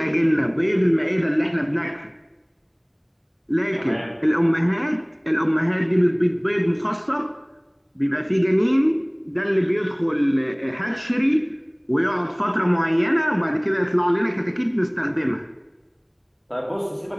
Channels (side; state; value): both; identical; correlation 1.00